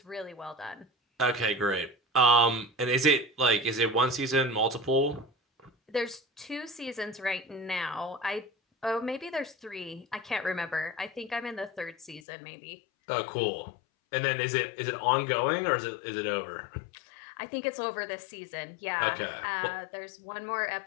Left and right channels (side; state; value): right; drops out; at 12.2 s